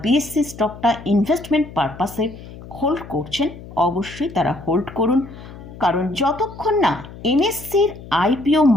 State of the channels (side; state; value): left; noise; hum, 16 dB below the sound